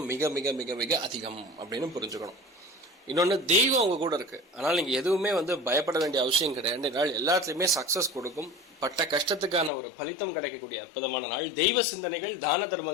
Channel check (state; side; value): drops out; right; at 9.7 s